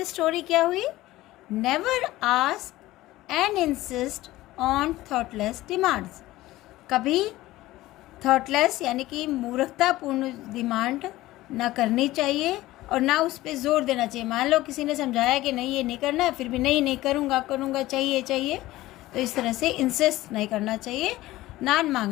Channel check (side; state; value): right; quieter; 17.0 dB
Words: स्टोरी क्या हुई? Never ask and insist on thoughtless demands, कभी थॉटलेस यानी कि मूर्खतापूर्ण डिमांड ना करनी चाहिए और ना उस पर जोर देना चाहिए। मान लो किसी ने समझाया कि नहीं ये नहीं करना है, फिर भी नहीं करूँगा, चाहिए, तो इस तरह से इंसिस्ट नहीं करना चाहिए।